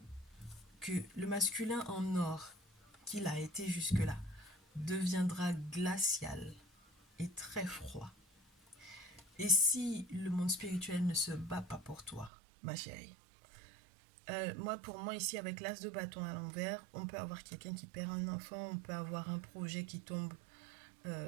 que le masculin en or qu'il a été jusque-là deviendra glacial et très froid. Et si le monde spirituel ne se bat pas pour toi, ma chérie, pour moi, ici, avec l'as de bâton à l'envers, on peut avoir quelqu'un qui perd un enfant, on peut avoir un projet qui tombe,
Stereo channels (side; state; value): left; drops out; at 12.3 s